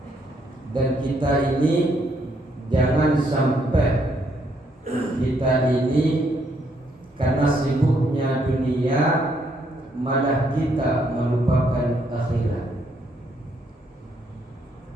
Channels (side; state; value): both; normal; correlation 0.72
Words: Dan kita ini jangan sampai kita ini karena sibuknya dunia malah kita melupakan akhirat.